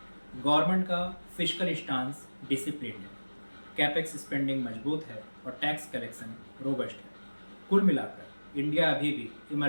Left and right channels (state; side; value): inverted; both; correlation -1.00